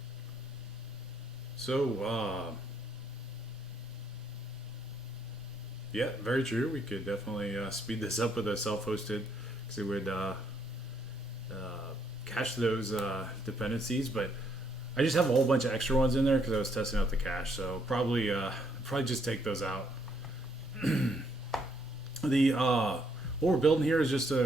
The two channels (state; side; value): normal; both; correlation 0.71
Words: So, yeah, very true. We could definitely speed this up with a self-hosted, because it would cache those dependencies. But I just have a whole bunch of extra ones in there because I was testing out the cache. So probably just take those out. What we're building here is just